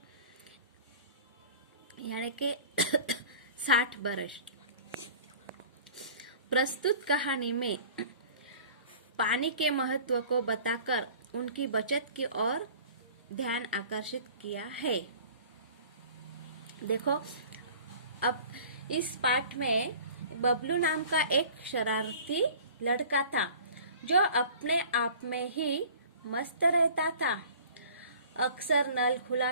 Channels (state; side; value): inverted; both; correlation -0.45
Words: यानी के 60 वर्ष। प्रस्तुत कहानी में पानी के महत्व को बताकर उनकी बचत की ओर ध्यान आकर्षित किया है। देखो, अब इस पाठ में बबलू नाम का एक शरारती लड़का था जो अपने आप में ही मस्त रहता था। अक्सर नल